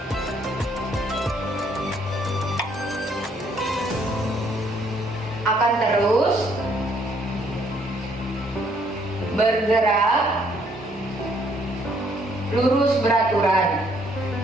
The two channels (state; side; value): normal; both; correlation 0.67